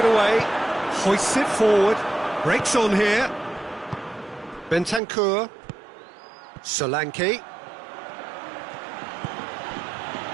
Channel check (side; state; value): left; drops out; at 5.0 s